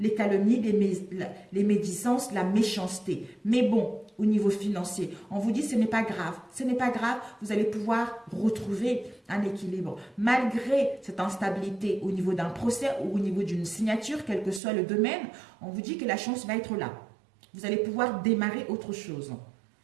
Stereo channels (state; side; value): drops out; left; at 14.6 s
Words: calomnies, les médisances, la méchanceté. Mais bon, au niveau financier, on vous dit ce n'est pas grave. Ce n'est pas grave, vous allez pouvoir retrouver un équilibre. Malgré cette instabilité au niveau d'un procès ou au niveau d'une signature, quel que soit le domaine, on vous dit que la chance va être là. Vous allez pouvoir démarrer autre chose.